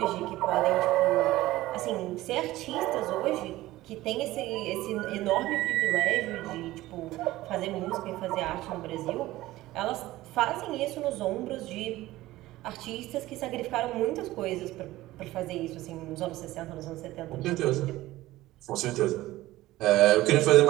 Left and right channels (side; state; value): left; quieter; 16.9 dB